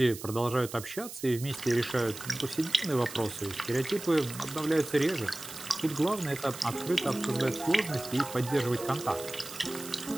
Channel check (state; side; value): noise; right; hiss, 12 dB below the sound